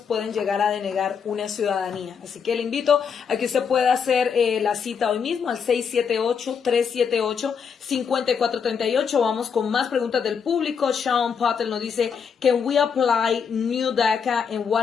pueden llegar a denegar una ciudadanía. Así que le invito a que usted pueda hacer la cita hoy mismo al 678-378-5438. Vamos con más preguntas del público. Sean Patel nos dice, can we apply new DACA and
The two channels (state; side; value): quieter; right; 6.5 dB